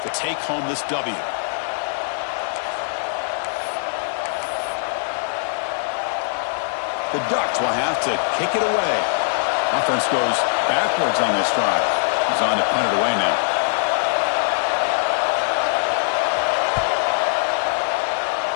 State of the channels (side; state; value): right; silent; digital silence